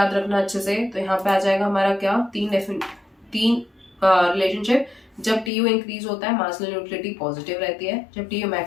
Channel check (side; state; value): right; drops out; at 5.5 s